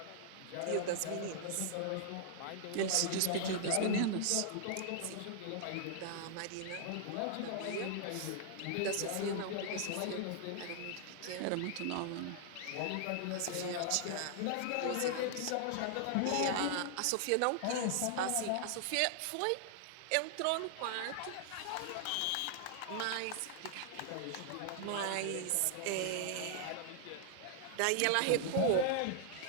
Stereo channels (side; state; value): both; different; correlation 0.00